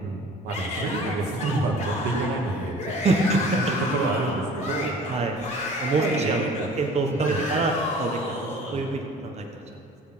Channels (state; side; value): normal; both; correlation 0.46